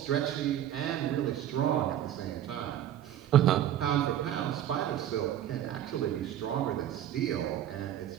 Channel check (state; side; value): quieter; left; 11.5 dB